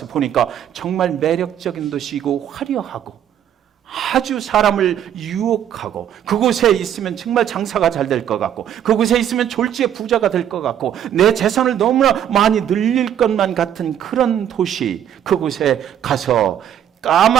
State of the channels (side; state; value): left; quieter; 10.0 dB